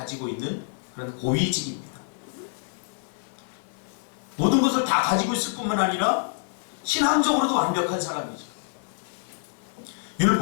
있는 그런 고위직입니다. 모든 것을 다 가지고 있을 뿐만 아니라 신앙적으로도 완벽한 사람이죠.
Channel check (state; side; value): silent; right; 60 dB below the other